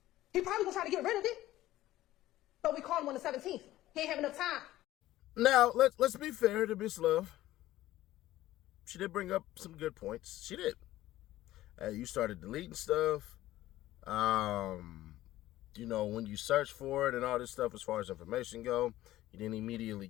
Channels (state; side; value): quieter; right; 15.3 dB